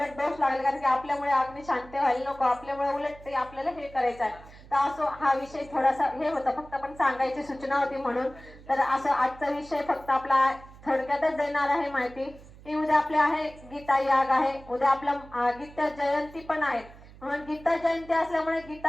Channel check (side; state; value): right; noise; hum, 20 dB below the sound